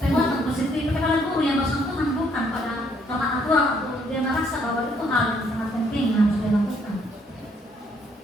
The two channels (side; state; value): both; normal; correlation 0.68